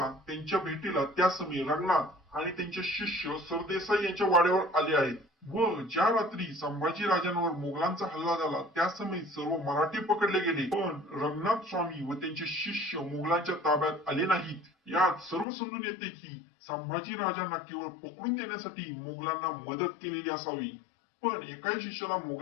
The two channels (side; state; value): right; drops out; at 15.5 s